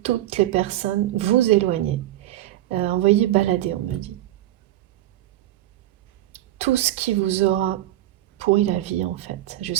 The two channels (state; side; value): quieter; left; 14.4 dB